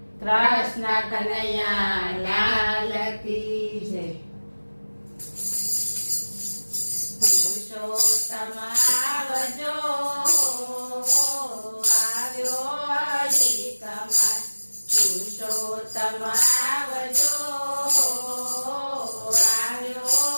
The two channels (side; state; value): both; inverted; correlation -1.00